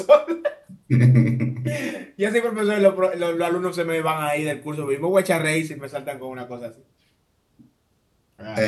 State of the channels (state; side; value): identical; both; correlation 1.00